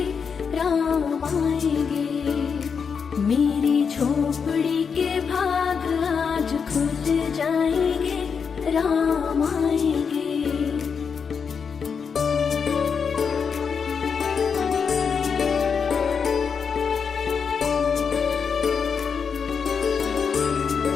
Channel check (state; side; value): quieter; right; 6.2 dB